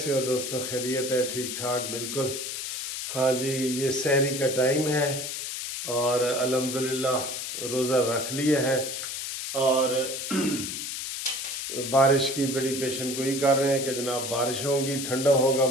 हो दोस्तों? खैरियत है? ठीक ठाक बिल्कुल। हाँ जी, ये सहरी का टाइम है और अल्हम्दुलिल्लाह रोज़ा रख लिया है और बारिश की बड़ी पेशन गोई कर रहे हैं कि जनाब बारिश होगी, ठंडा होगा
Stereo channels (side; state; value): left; noise; hiss, 5 dB below the sound